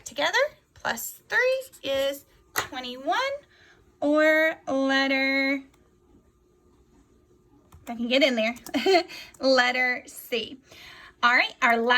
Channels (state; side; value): identical; both; correlation 1.00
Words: together, plus 3 is 21, or letter, if I can get in there, letter C. All right, our